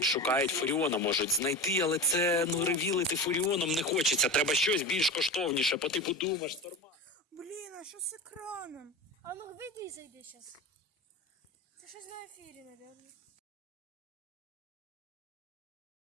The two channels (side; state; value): both; normal; correlation 0.27